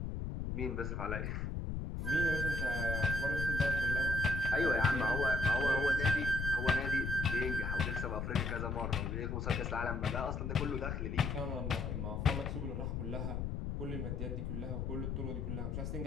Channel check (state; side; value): noise; left; rumble, 2 dB below the sound